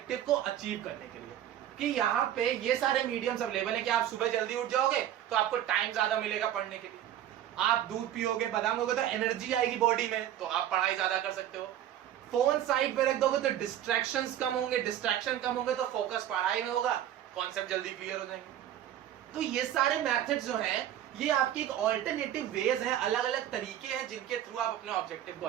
को अचीव करने के लिए, कि यहाँ पे ये सारे मीडियम्स अवेलेबल है कि आप सुबह जल्दी उठ जाओगे तो आपको टाइम ज्यादा मिलेगा पढ़ने के लिए। आप दूध पियोगे, बादाम होगे तो एनर्जी आएगी बॉडी में, तो आप पढ़ाई ज्यादा कर सकते हो। फोन साइड पे रख दोगे तो डिस्ट्रैक्शंस कम होंगे, डिस्ट्रैक्शन कम होंगे तो फोकस पढ़ाई में होगा, कॉन्सेप्ट जल्दी क्लियर हो जाएंगे। तो ये सारे मेथड्स जो हैं ये आपकी एक ऑल्टरनेटिव वेज है, अलग अलग तरीके हैं जिनके थ्रू आप अपने ऑब्जेक्टिव को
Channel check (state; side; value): quieter; left; 11.4 dB